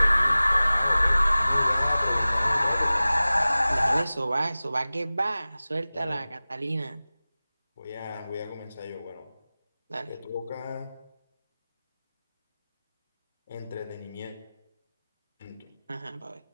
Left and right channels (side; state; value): both; inverted; correlation -0.97